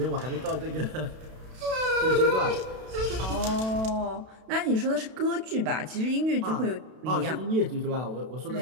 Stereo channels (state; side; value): late; left; 32 ms